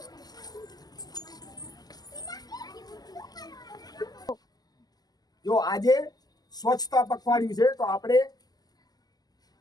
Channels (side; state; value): right; late; 0.19 ms